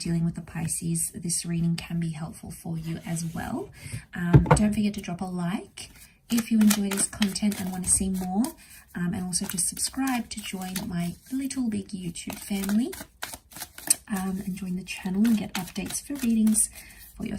with the Pisces. This reading can be helpful for you as well. Don't forget to drop a like if you enjoy this content and want to see more. And also just subscribe to join my little big YouTube family and join the channel and get updates for readings for your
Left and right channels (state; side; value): identical; both; correlation 1.00